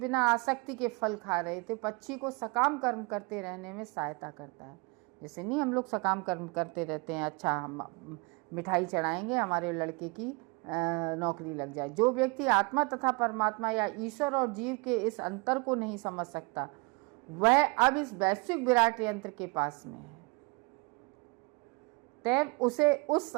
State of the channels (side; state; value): left; quieter; 28.5 dB